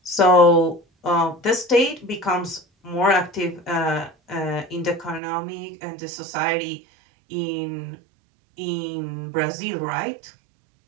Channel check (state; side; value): drops out; left; at 5.2 s